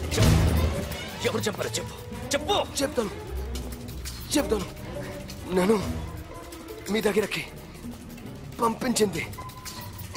ఎవరు చంపారో చెప్పు, చెప్పు. చెప్తాను. నన్ను మీ దగ్గరకి పంపించింది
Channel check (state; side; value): identical; both; correlation 1.00